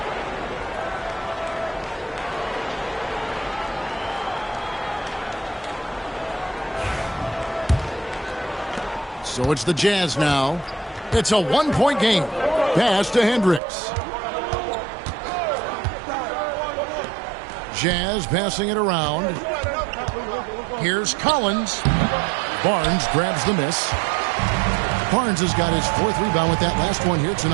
So it's the Jazz now. It's a one-point game. Pass to Hendricks. Jazz passing it around. Here's Collins. Barnes grabs the miss. Barnes has got his 4th rebound with that last one here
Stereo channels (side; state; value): left; drops out; at 13.6 s